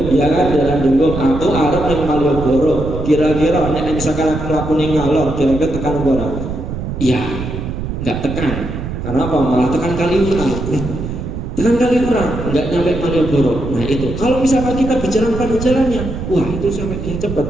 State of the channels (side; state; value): right; noise; rumble, 6 dB below the sound